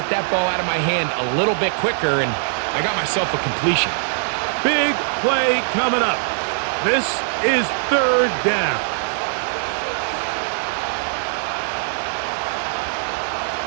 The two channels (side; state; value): left; silent; digital silence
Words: that ball out of my hand a little bit quicker, and I got myself a completion. Big play coming up. This is third down.